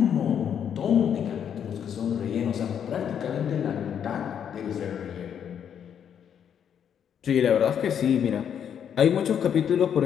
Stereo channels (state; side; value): quieter; right; 8.5 dB